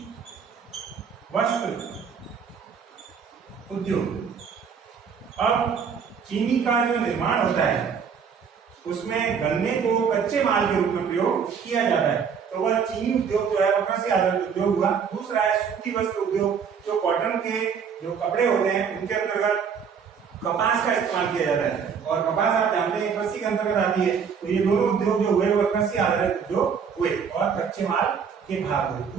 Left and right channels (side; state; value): left; quieter; 6.7 dB